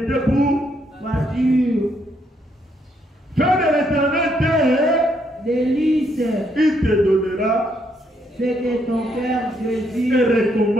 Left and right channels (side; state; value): both; normal; correlation 0.73